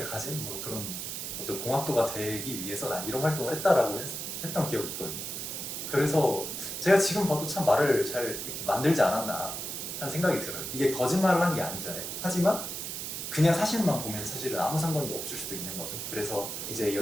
가진 뭐 그런 어떤 공학도가 되기 위해서 난 이런 활동을 했다라고 했던 기억이 있거든요. 그래서 제가 지금 봐도 참 말을 잘 이렇게 만들지 않았나 하는 생각이 들어요. 이게 거짓말을 한 게 아니잖아요. 하지만 그냥 사실만 보면 사실은 아무 상관도 없을 수도 있는 거죠. 그래서 이제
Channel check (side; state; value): right; noise; hiss, 5 dB below the sound